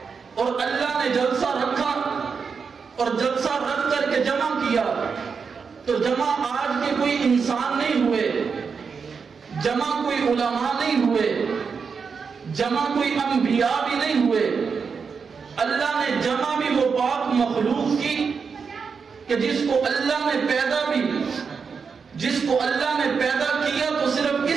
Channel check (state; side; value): quieter; left; 5.7 dB